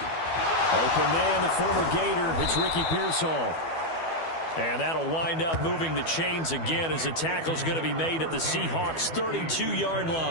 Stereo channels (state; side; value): late; right; 12 ms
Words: Open man, the former Gator. It's Ricky Pearsall. And that'll wind up moving the chains again as the tackle's going to be made at the Seahawks' 32-yard